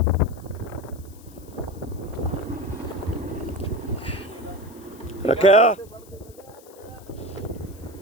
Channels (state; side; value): noise; left; hiss, 24 dB below the sound